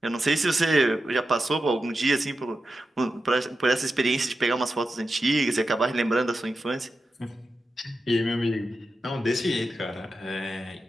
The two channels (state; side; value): normal; both; correlation 0.90